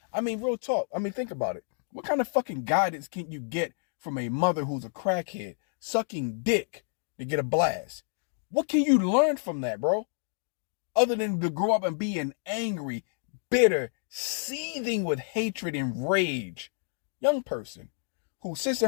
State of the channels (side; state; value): right; silent; digital silence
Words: I mean, real talk. I mean, think about it. What kind of fucking guidance can you get from a mother who's a crackhead sucking dick to get a blast? What can you learn from that, bro? Other than to grow up and be an angry, bitter, seething with hatred and rage young person who sits